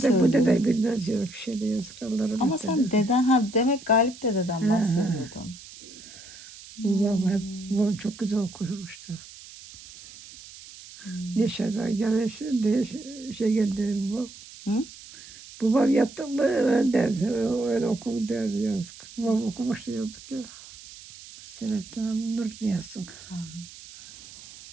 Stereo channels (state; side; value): noise; right; hiss, 18 dB below the sound